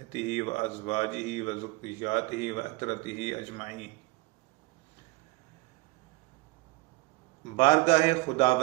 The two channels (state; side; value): quieter; left; 21.7 dB